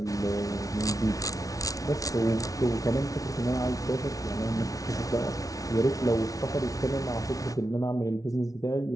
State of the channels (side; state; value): right; late; 0.17 ms